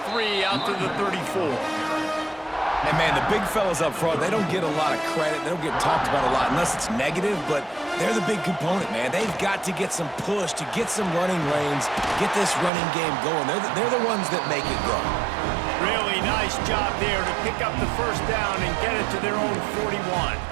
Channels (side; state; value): left; drops out; at 12.7 s